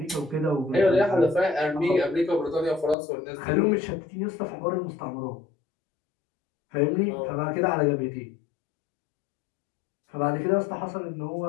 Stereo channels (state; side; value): drops out; right; at 3.0 s